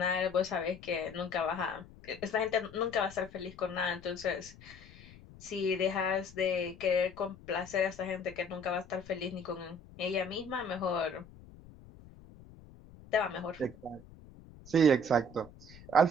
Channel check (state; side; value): noise; left; rumble, 20 dB below the sound